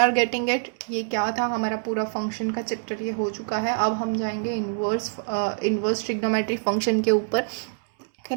getting it. ये क्या था? हमारा पूरा फंक्शन का चैप्टर ये हो चुका है। अब हम जाएंगे इन्वर्स ट्रिग्नोमेट्री फंक्शन के ऊपर के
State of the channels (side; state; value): left; silent; digital silence